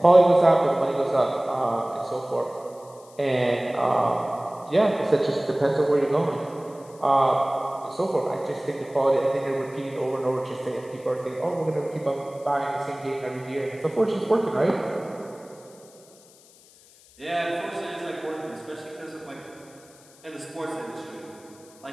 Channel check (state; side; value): noise; left; hiss, 26 dB below the sound